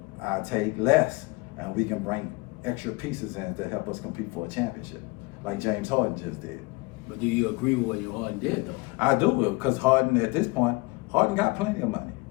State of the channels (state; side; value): quieter; right; 24.9 dB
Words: I take less, and we can bring extra pieces in to help us compete for a championship, like James Harden just did. But do you agree with what Harden did though? I do, because Harden at this point, Harden got plenty of money,